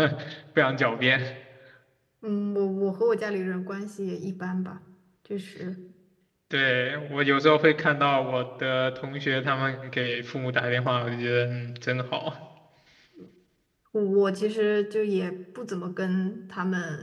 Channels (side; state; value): both; identical; correlation 1.00